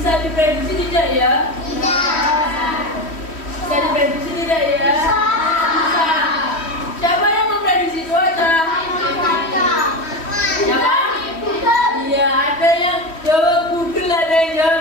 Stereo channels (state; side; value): late; right; 3.1 ms